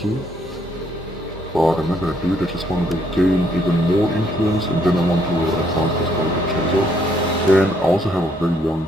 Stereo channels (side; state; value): both; normal; correlation 0.69